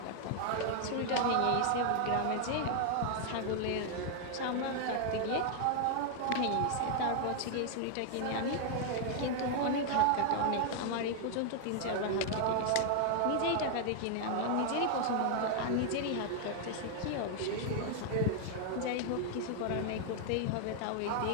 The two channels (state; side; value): different; both; correlation 0.00